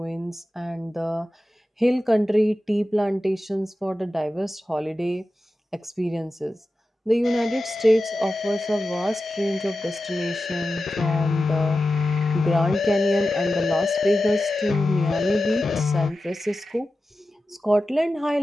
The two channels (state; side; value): normal; both; correlation 0.93